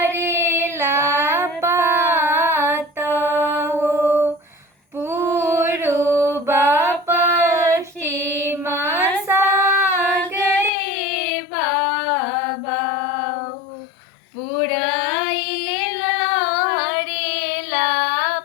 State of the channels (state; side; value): drops out; right; at 10.7 s